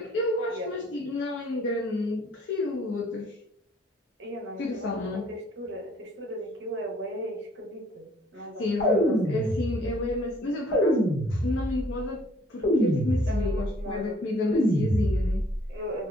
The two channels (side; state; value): both; normal; correlation 0.60